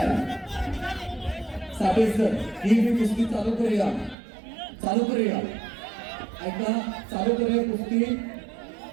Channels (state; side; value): drops out; left; at 4.2 s